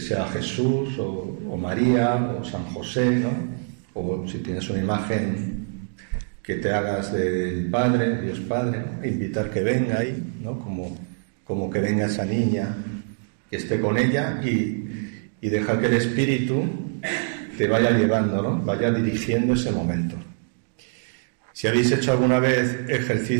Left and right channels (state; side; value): silent; left; digital silence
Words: Jesús, o María, o San José, ¿no?, o si tienes una imagen que te hagas del Padre, de Dios Padre, ¿no?, invitar que venga ahí, ¿no?, como que venga esa niña, que esté con ella y dejar que el Espíritu te vaya llevando, ¿no?, vaya dirigiendo ese momento. Si habéis hecho alguna vez